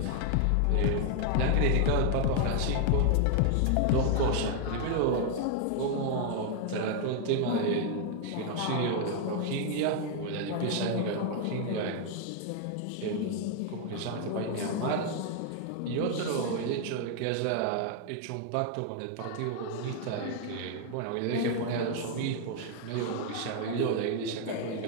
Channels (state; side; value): different; both; correlation 0.00